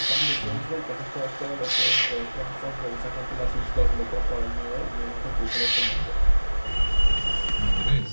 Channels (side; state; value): both; inverted; correlation -1.00